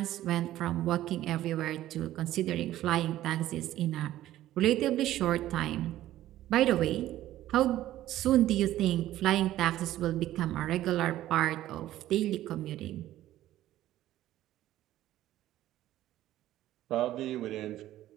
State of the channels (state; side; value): quieter; left; 13.9 dB